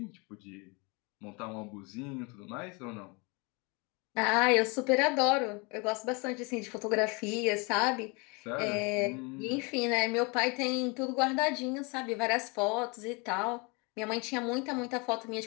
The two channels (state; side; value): quieter; right; 29.6 dB